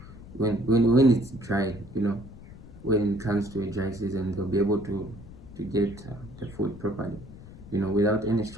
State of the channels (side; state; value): left; noise; rumble, 17 dB below the sound